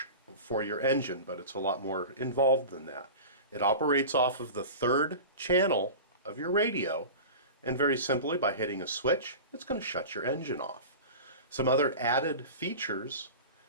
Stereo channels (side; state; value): both; inverted; correlation -0.32